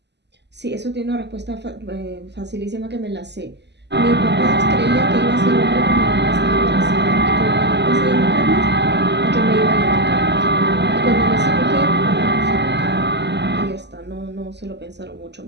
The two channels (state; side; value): late; left; 0.50 ms